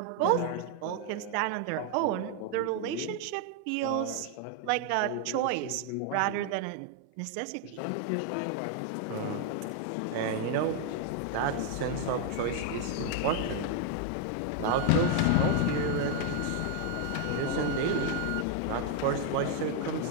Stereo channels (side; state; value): both; different; correlation 0.00